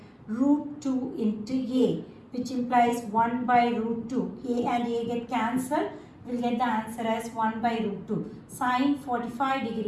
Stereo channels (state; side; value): identical; both; correlation 1.00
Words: root 2 into A, which implies 1 by root 2. A and A get cancelled. We'll get the answer as 1 by root 2. Sin 45